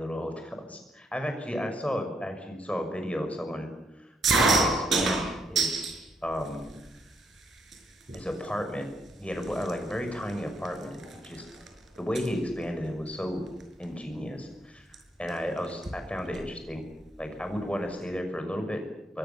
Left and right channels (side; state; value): both; normal; correlation 0.75